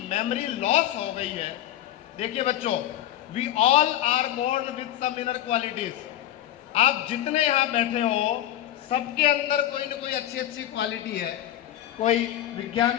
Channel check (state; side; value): quieter; right; 12.7 dB